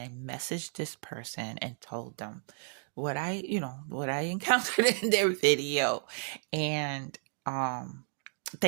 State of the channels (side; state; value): left; silent; 56 dB below the other